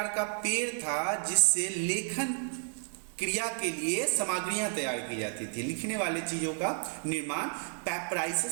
का पेड़ था जिससे लेखन क्रिया के लिए सामग्रियां तैयार की जाती थी। लिखने वाले चीजों का निर्माण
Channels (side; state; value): left; silent; 57 dB below the other